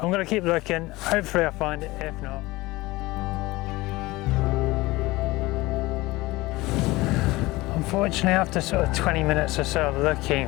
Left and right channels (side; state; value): right; quieter; 20.4 dB